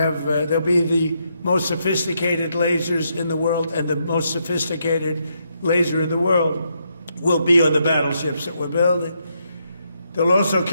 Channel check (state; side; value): inverted; both; correlation -0.78